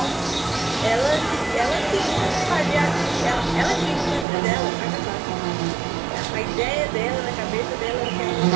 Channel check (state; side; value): drops out; left; at 4.2 s